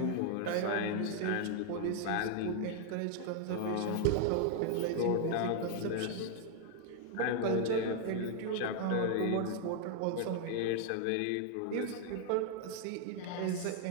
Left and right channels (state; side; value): different; both; correlation 0.00